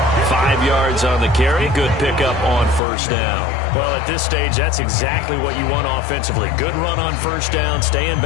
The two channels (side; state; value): right; drops out; at 2.8 s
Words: 5 yards on the carry. Good pickup on 1st down. Well, at this stage, that's exactly what you want offensively. Good run on 1st down. Stay in